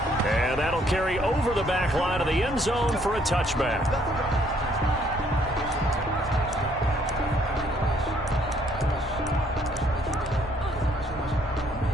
And that'll carry over the back line of the end zone for a touchback.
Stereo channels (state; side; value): normal; both; correlation 0.66